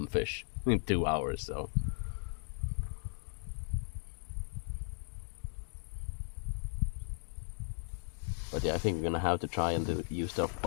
fish in 2 hours. So but yeah, I think we're gonna have to try and use the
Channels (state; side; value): silent; right; digital silence